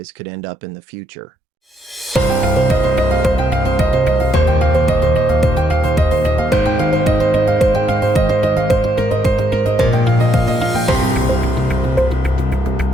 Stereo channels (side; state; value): both; normal; correlation 0.73